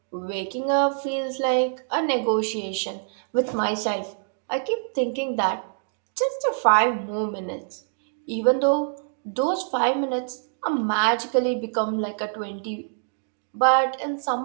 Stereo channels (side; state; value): left; silent; digital silence